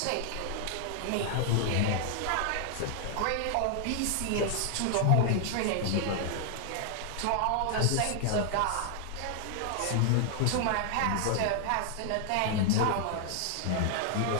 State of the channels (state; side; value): different; both; correlation 0.00